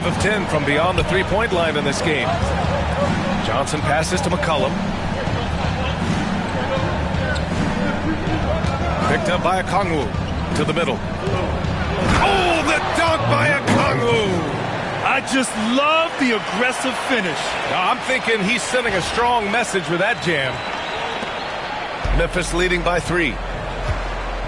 of 10 from beyond the three-point line in this game. Johnson passes to McCollum. Picked up by Okongwu to the middle. Oh, the dunk by Okongwu! I just love the aggressive finish. Now, I'm thinking he's sending a strong message with that jam. Memphis leading by 3.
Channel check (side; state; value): both; identical; correlation 1.00